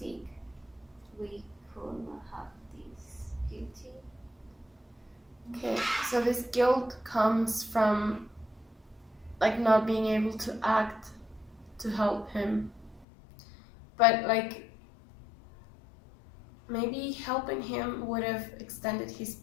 we could not have this guilty. Okay, so this guilt comes from like not being able to act to help him. But like maybe helping him would have extended his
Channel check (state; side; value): drops out; right; at 13.1 s